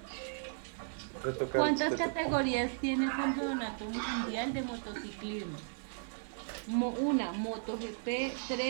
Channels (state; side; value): silent; left; digital silence